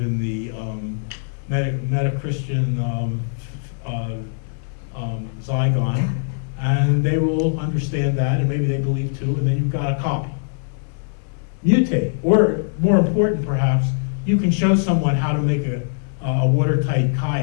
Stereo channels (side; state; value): right; silent; digital silence